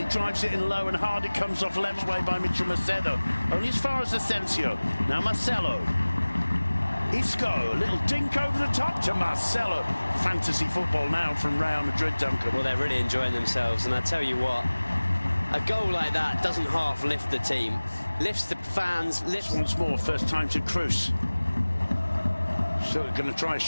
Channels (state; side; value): inverted; both; correlation -1.00